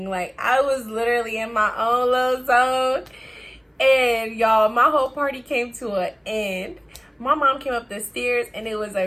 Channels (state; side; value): identical; both; correlation 1.00